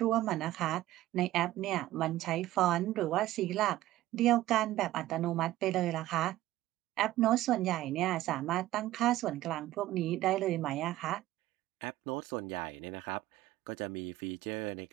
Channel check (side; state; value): left; quieter; 15.3 dB